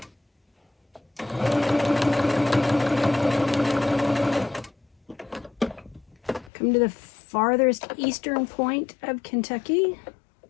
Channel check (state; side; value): drops out; right; at 6.5 s